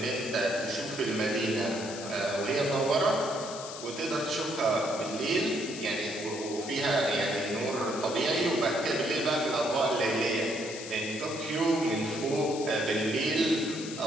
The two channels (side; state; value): left; noise; hiss, 11 dB below the sound